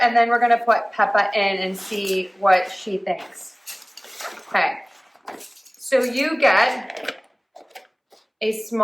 then we're going to put Peppa in and see what she thinks. Okay, so you get a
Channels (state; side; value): identical; both; correlation 1.00